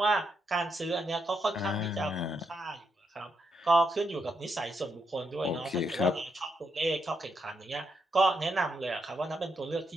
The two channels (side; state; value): both; normal; correlation 0.80